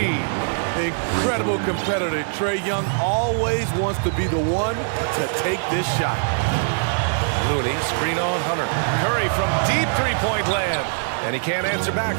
Incredible competitor. Trae Young always wants to be the one to take this shot. Looney, screen on Hunter. Curry from deep three-point land. And he can't answer back.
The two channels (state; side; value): silent; left; digital silence